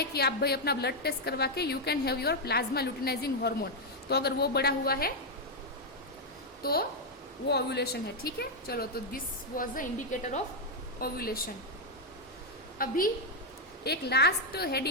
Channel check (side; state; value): both; normal; correlation 0.00